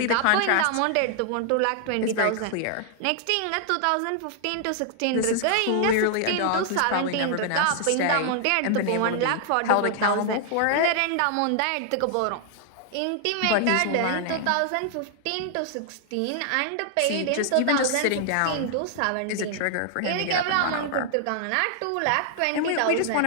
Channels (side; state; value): both; different; correlation -0.01